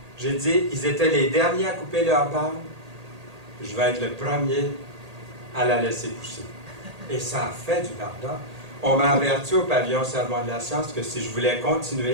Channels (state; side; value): late; left; 1.8 ms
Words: J'ai dit, ils étaient les derniers à couper leur barbe. Je vais être le premier à la laisser pousser. Et ça a fait du bardard. On m'a averti au pavillon Sermon de la Science que si je voulais